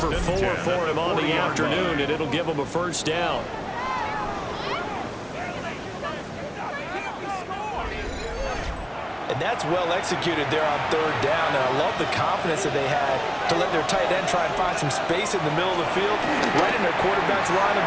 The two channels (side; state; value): both; identical; correlation 1.00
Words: 4 for him on the afternoon, and it'll give him a first down. And that's well executed there on 3rd down. And I love the confidence that they had to let their tight end try and find some space in the middle of the field, right in their quarterback's line of